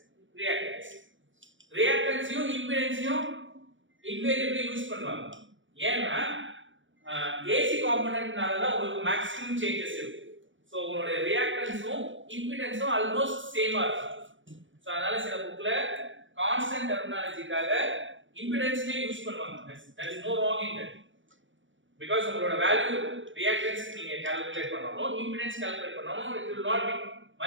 reactance. reactance யும் impedance யும் invariably யூஸ் பண்ணுவாங்க. ஏன்னா AC காம்போனன்ட்னால தான் உங்களுக்கு மேக்ஸிமம் சேஞ்சஸ் இருக்கும். சோ உங்களுடைய ரியாக்டன்ஸும் இம்பிடன்ஸும் ஆல்மோஸ்ட் சேமா இருக்கும். சோ அதனால சில புக்ல கான்ஸ்டன்ட் டெர்மினாலஜிக்காக இம்பிடன்ஸ்னே யூஸ் பண்ணுவாங்க. there is no wrong in that. because உங்களோட வேல்யூ ரியாக்டன்ஸ் நீங்க கால்குலேட் பண்ணனும், இம்பிடன்ஸ் கால்குலேட் பண்ணனும், it will not be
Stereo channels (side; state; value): left; late; 0.56 ms